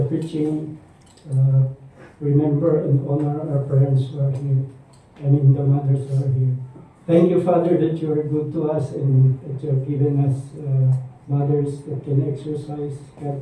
preaching, remember and honor our parents who are here. I mean, the mothers who are here. Thank you, Father, that you are good to us and that you have given us mothers that can exercise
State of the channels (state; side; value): identical; both; correlation 1.00